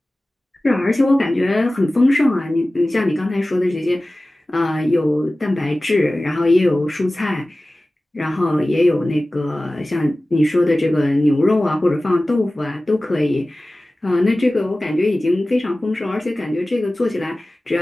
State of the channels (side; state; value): both; normal; correlation 0.97